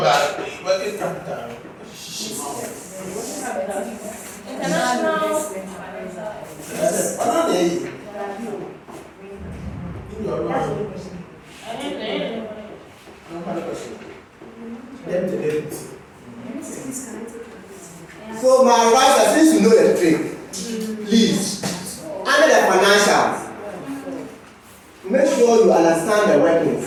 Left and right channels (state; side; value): identical; both; correlation 1.00